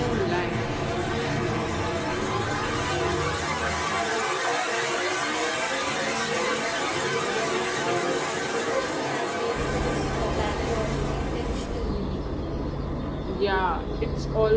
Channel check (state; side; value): identical; both; correlation 1.00